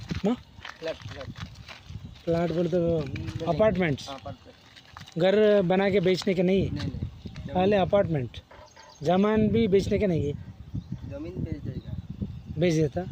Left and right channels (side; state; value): both; identical; correlation 1.00